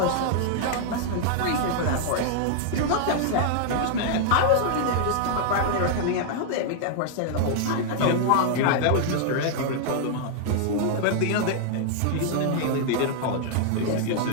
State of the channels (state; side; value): different; both; correlation -0.01